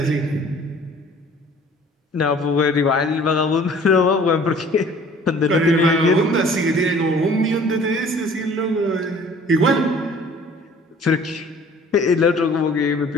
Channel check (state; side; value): normal; both; correlation 0.51